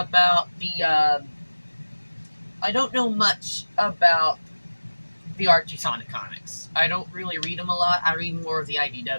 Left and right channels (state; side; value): inverted; both; correlation -1.00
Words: the Archie Sonic comics. I don't really read them a lot. I read more of the